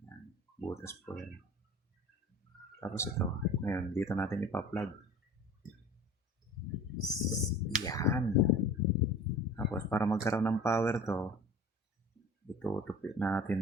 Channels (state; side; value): normal; both; correlation 0.41